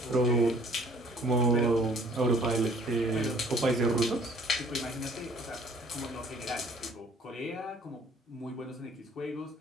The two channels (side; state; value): both; normal; correlation 0.56